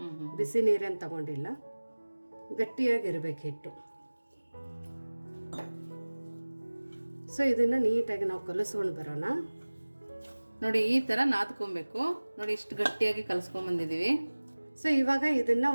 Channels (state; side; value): inverted; both; correlation -1.00